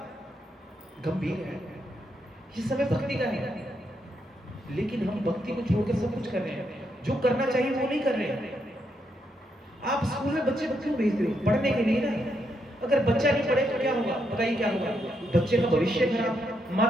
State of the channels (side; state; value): both; normal; correlation 0.79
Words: गंभीर है, ये समय भक्ति का है, लेकिन हम भक्ति को छोड़कर सब कुछ कर रहे हैं। जो करना चाहिए वो नहीं कर रहे हैं। आप स्कूल में बच्चे को क्यों भेजते हो? पढ़ने के लिए ना। अगर बच्चा नहीं पढ़े तो क्या होगा? बताइए क्या होगा? बच्चे का भविष्य खराब,